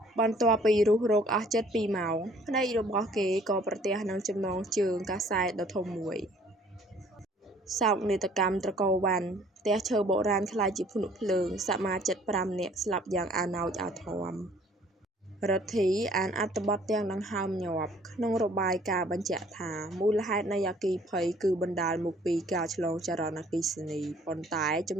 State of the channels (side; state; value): both; normal; correlation 0.57